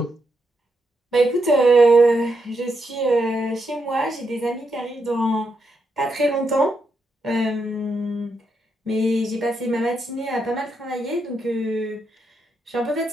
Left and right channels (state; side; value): normal; both; correlation 0.81